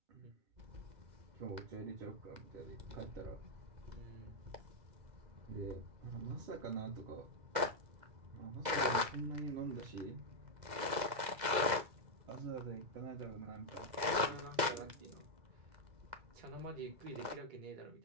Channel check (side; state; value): left; late; 2.0 ms